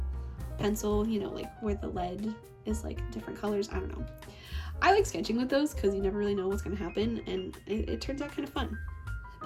pencil, you know, like where the lead is like different colors. I don't know. I like sketching with those because you never really know what's gonna happen, and it turns out kind of fun.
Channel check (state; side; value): identical; both; correlation 1.00